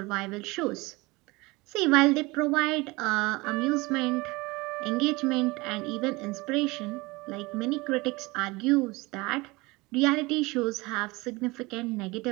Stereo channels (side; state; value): left; quieter; 23.3 dB